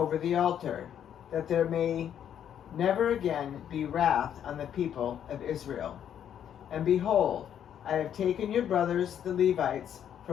the altar, that there may never again be wrath on the people of Israel. And behold, I have taken your brothers the Levites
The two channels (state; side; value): quieter; right; 9.5 dB